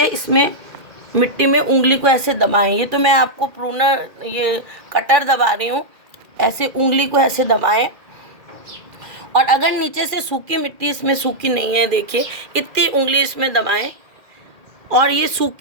इसमें मिट्टी में उंगली को ऐसे दबाएं। ये तो मैं आपको प्रूनर, ये कटर दबा रही हूँ, ऐसे उंगली को ऐसे दबाएं। और अगर नीचे से सूखी मिट्टी इसमें सूखी नहीं है, देखिए इतनी उंगली इसमें दबाएं। और ये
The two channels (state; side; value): late; left; 2.4 ms